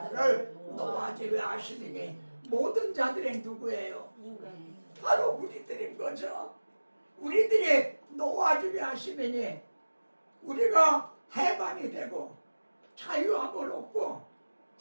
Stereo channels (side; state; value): both; inverted; correlation -1.00